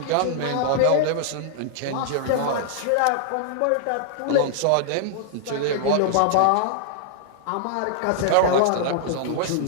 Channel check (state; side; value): different; both; correlation -0.01